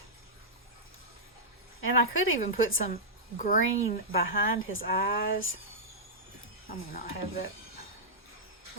And I could even put some green behind his eyes. I may not have that.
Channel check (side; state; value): both; normal; correlation -0.10